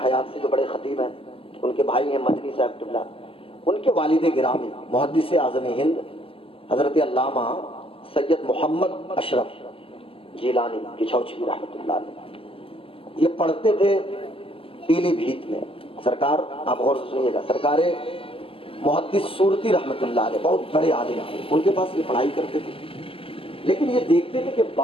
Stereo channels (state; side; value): late; right; 0.26 ms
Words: حیات سے جو بڑے خطیب ہیں، ان کے بھائی ہیں مدنی صاحب قبلہ، ان کے والد گرامی محدث اعظم ہند حضرت علامہ سید محمد اشرف جیلانی کچھوچی رحمۃ اللہ علیہ، یہ پڑھتے تھے پیلی بھیت میں. سرکار آپ غور سے سنیے گا، سرکار محدث صورتی رحمۃ اللہ علیہ بہت بڑے عالم ہیں، ان کے پاس یہ پڑھائی کرتے تھے. لیکن یہ دیکھتے تھے کہ